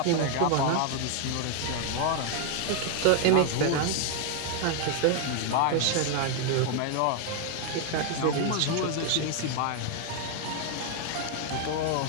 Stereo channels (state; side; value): different; both; correlation 0.00